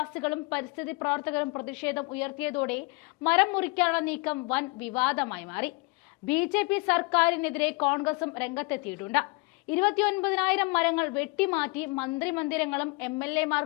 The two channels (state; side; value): quieter; right; 28.2 dB